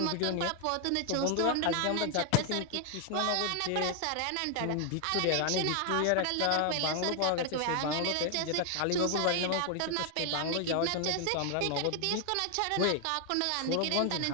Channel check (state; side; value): different; both; correlation 0.00